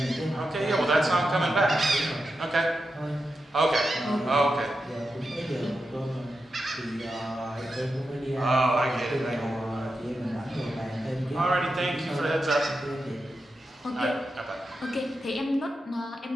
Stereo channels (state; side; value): normal; both; correlation 0.88